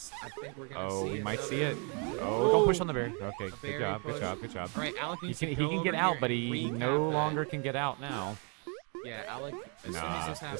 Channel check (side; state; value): left; quieter; 36.5 dB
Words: I think we're gonna. Oh, see we might see another- it. Oh, don't push on the berry. Okay, berry good job, push. good job, good job. All right, Alec He needs can to he go can over get out, here but and he recap no that. longer can get out now. Yeah, Alec, as soon as Nah, this